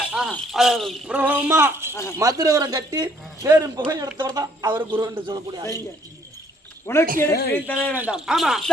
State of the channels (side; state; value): both; normal; correlation 0.65